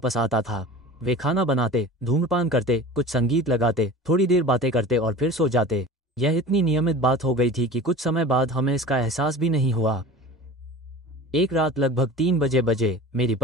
आता था। वे खाना बनाते, धूम्रपान करते, कुछ संगीत लगाते, थोड़ी देर बातें करते और फिर सो जाते। यह इतनी नियमित बात हो गई थी कि कुछ समय बाद हमें इसका एहसास भी नहीं हुआ। एक रात लगभग 3 बजे मेरी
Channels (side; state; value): both; normal; correlation 0.37